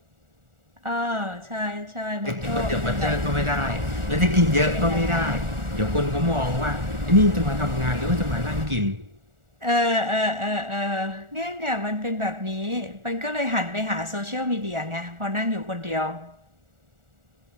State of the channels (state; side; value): late; left; 1.4 ms